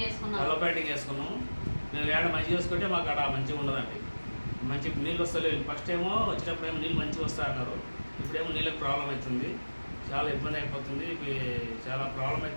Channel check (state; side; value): inverted; both; correlation -1.00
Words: వేసుకున్నాము. మేము ఏడ మంచిగా వేసుకుంటే మాకు అక్కడ మంచిగా ఉండదండి. మంచి నీళ్ళు వస్తలేదు. ఫస్ట్ ఏమో వచ్చినప్పుడు ఏమో నీళ్ళు మంచిగా వస్తాయన్నారు. ఇప్పుడేమో నీళ్ళకి ప్రాబ్లం అవుతుంది, చాలా ఇబ్బంది అయిపోతుంది. చాలా ప్రాబ్లం